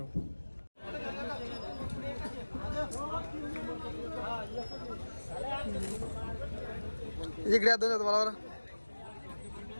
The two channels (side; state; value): both; inverted; correlation -1.00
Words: इकडे या दोन तुम्हाला